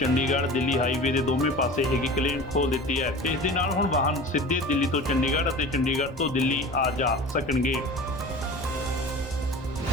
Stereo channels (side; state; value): both; normal; correlation 0.37